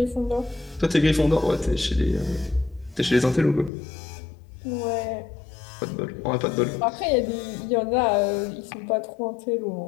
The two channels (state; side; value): drops out; right; at 3.7 s